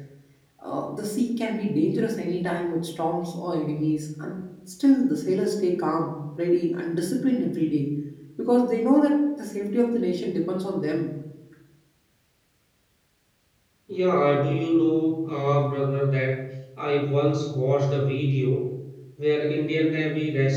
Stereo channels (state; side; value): identical; both; correlation 1.00